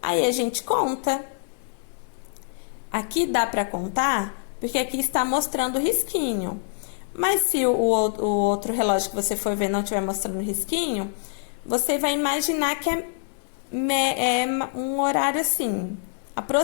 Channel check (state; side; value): silent; right; digital silence